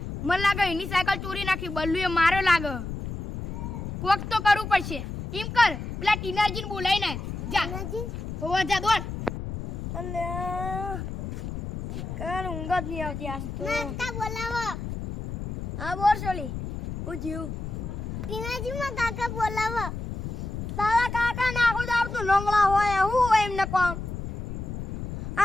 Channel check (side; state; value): left; noise; rumble, 6 dB below the sound